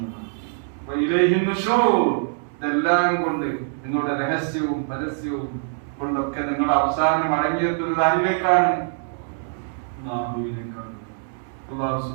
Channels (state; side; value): silent; left; 63 dB below the other